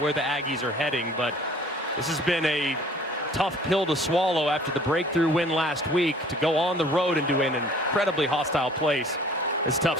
the Aggies are heading, but this has been a tough pill to swallow after the breakthrough win last week. To go on the road and do an incredibly hostile place is tough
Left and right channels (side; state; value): both; normal; correlation 0.52